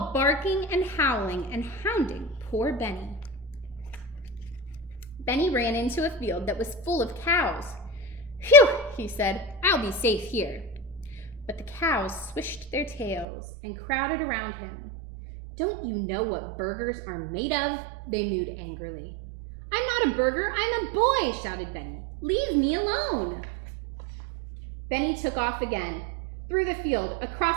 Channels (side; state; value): left; drops out; at 13.2 s